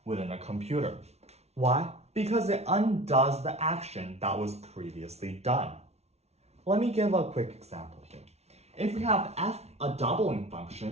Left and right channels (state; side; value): late; left; 0.31 ms